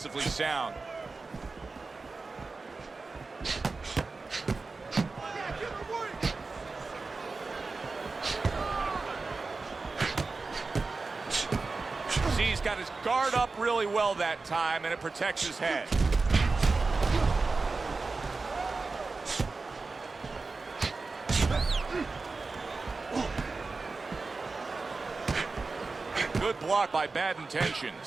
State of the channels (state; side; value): quieter; left; 3.9 dB